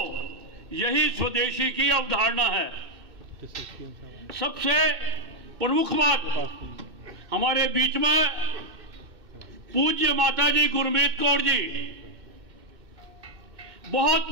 यही स्वदेशी की अवधारणा है। सबसे प्रमुख बात, हमारे बीच में पूज्य माताजी गुरमीत कौर जी बहुत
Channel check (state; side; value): late; left; 2.6 ms